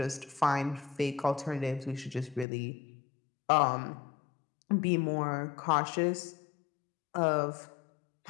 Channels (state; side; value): drops out; right; at 2.5 s